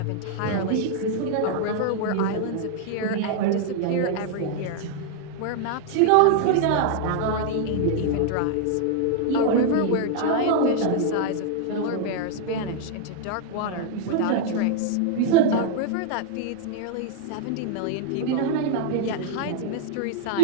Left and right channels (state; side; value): different; both; correlation 0.00